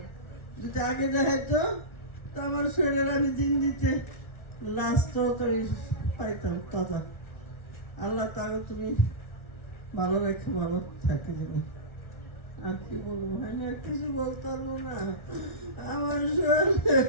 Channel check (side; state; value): right; late; 1.4 ms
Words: যদি আগে দেখাইতো তো আমার শরীরের আমি দিন দিতে লাস্টও তো পাইতাম তাজা। আল্লাহ তাকে তুমি ভালো রেখে ভালো থাকে জানি। আর কি বলবো, হয় না কিছু বলতে পারবো না আমার শরীর।